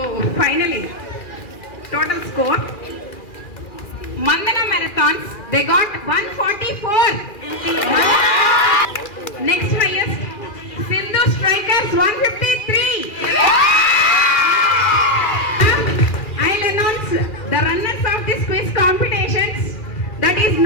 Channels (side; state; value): right; late; 2.4 ms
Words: finally total score Mandana Marathons, they got 144. Next highest, Sindhu Strikers 153. I'll announce the runners of this quiz competitions. That is